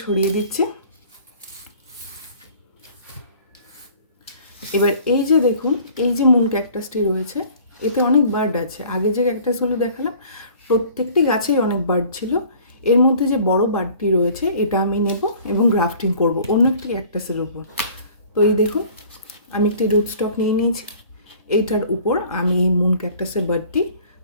সরিয়ে দিচ্ছি। এবার এই যে দেখুন, এই যে মুন ক্যাকটাসটি রয়েছে, এতে অনেক বার্ড আছে। আগে যে ক্যাকটাসগুলো দেখালাম প্রত্যেকটি গাছেই অনেক বার্ড ছিল। এর মধ্যে যে বড় বার্ডটি রয়েছে এটা আমি নেব এবং গ্রাফটিং করব অন্য একটি ক্যাকটাসের উপর। তো এই দেখুন, আমি একটি রুট স্টক নিয়ে নিয়েছি। এইটার উপর আমি এই মুন ক্যাকটাসের বার্ডটি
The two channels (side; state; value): both; inverted; correlation -0.50